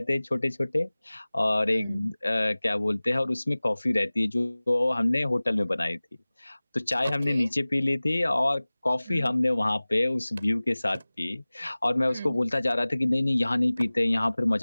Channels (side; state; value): both; inverted; correlation -0.99